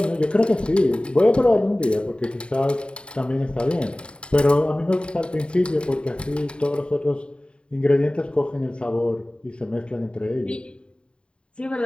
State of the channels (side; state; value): right; late; 0.053 ms